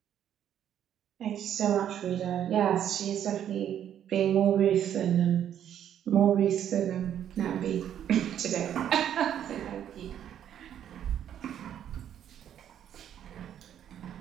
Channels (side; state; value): left; quieter; 10.0 dB